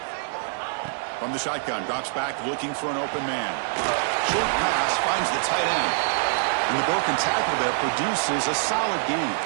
From the shotgun, drops back looking for an open man. Short pass finds the tight end. And the broken tackle there produces a solid gain.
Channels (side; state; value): left; silent; digital silence